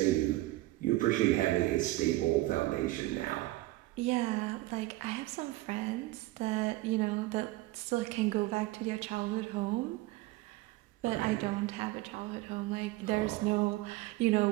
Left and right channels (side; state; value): left; quieter; 18.6 dB